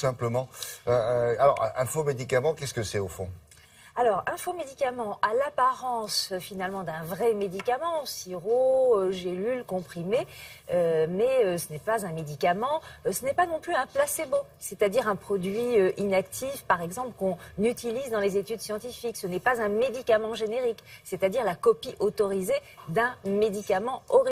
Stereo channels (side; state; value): both; identical; correlation 1.00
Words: Alors, un faux médicament, qu'est-ce que c'est au fond ? Alors, un faux médicament a l'apparence finalement d'un vrai médicament, sirop, gélule, comprimé, mais ce n'est pas un médicament, ce n'est pas non plus un placebo, c'est-à-dire un produit inactif, par exemple, qu'on utilise dans les études scientifiques. Ce n'est pas un médicament générique, c'est-à-dire la copie autorisée d'un médicament